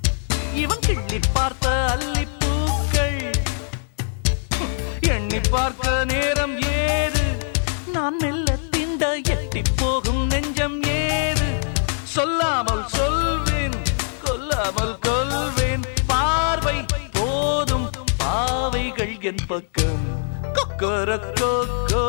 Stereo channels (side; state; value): right; silent; digital silence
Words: இவன் கிள்ளி பார்த்த அல்லிப்பூக்கள் எண்ணி பார்க்க நேரம் ஏது நான் மெல்ல திண்ட எட்டி போகும் நெஞ்சம் ஏது சொல்லாமல் சொல்வேன் கொல்லாமல் கொள்வேன் பார்வை போதும் பாவைகள் என் பக்கம் கொக்கரக்கோ